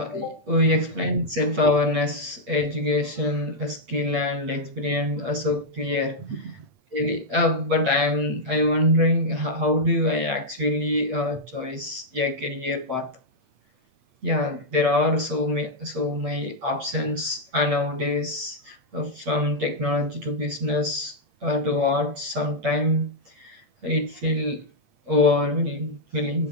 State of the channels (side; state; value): left; late; 8.6 ms